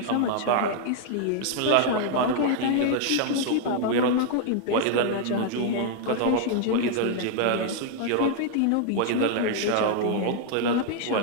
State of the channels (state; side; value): different; both; correlation 0.00